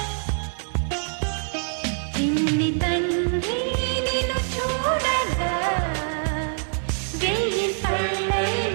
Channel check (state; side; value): silent; left; digital silence